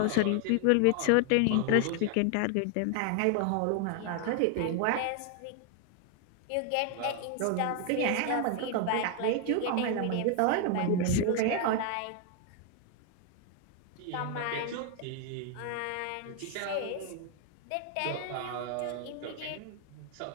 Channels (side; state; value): both; different; correlation 0.00